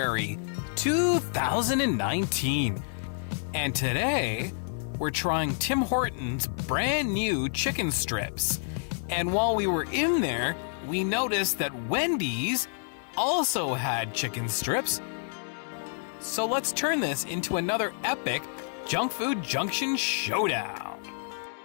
2019, and today we're trying Tim Hortons' brand new chicken strips. And while we were in there, we noticed that Wendy's also had chicken strips. So let's turn this into another epic Junkfood Junction showdown.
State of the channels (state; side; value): silent; right; 59 dB below the other